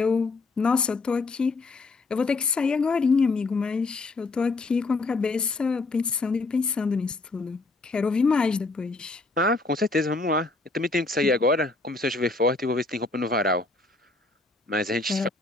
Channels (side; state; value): right; quieter; 3.4 dB